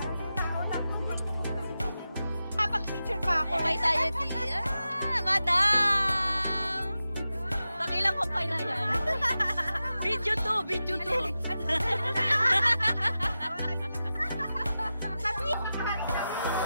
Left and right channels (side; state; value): both; inverted; correlation -0.92